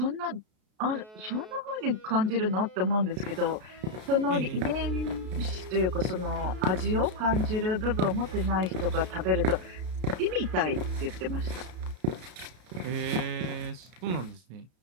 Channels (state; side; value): late; left; 33 ms